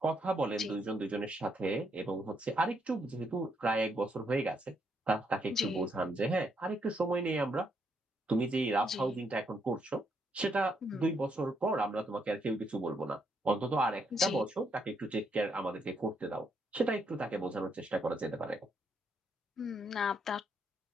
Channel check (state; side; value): normal; both; correlation 0.75